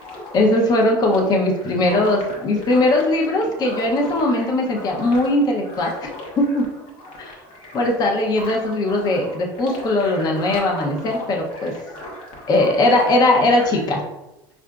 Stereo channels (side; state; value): both; normal; correlation 0.47